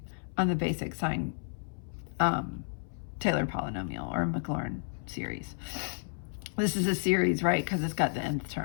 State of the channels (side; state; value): right; silent; 57 dB below the other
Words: on the basic sine Taylor polynomial or Maclaurin series. This is a series, right, because it's got the nth